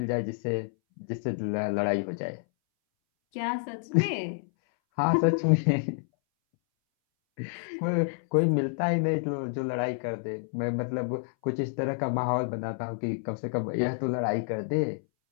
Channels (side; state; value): right; silent; 59 dB below the other